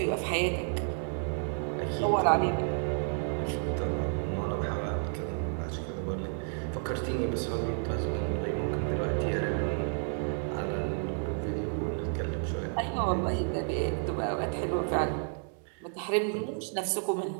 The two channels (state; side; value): silent; left; 57 dB below the other